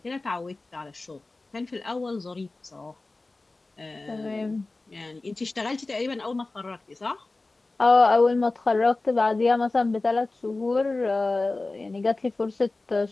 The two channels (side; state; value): right; quieter; 3.2 dB